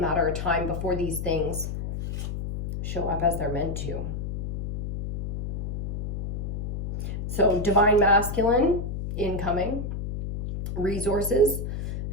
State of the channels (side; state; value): left; noise; hum, 5 dB below the sound